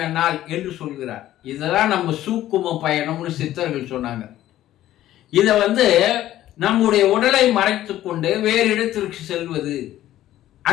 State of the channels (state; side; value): quieter; right; 13.6 dB